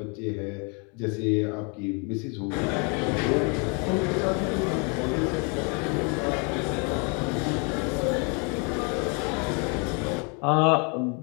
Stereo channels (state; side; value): quieter; right; 34.8 dB